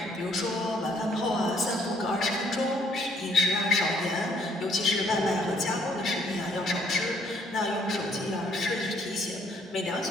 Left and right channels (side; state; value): both; normal; correlation 0.65